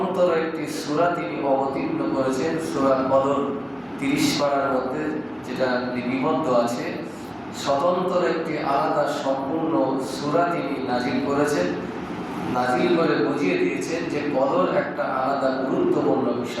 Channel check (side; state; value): both; identical; correlation 1.00